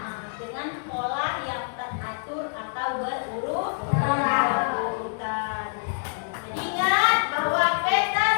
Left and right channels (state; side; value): silent; right; digital silence